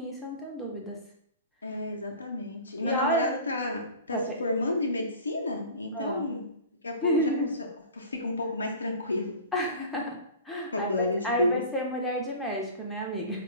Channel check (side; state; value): both; inverted; correlation -0.39